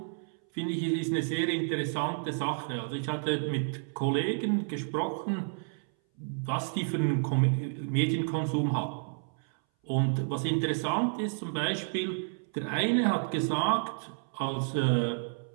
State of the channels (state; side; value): silent; left; 57 dB below the other